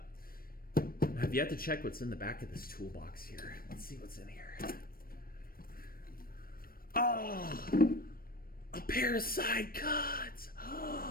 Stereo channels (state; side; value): late; right; 0.43 ms